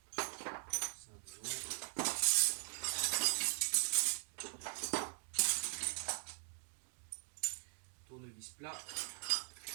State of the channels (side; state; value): left; silent; 50 dB below the other